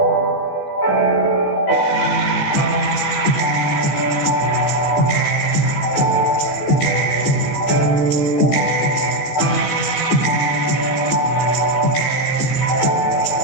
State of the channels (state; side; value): late; right; 15 ms